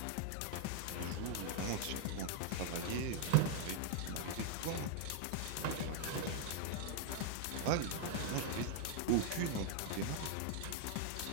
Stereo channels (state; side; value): different; both; correlation 0.00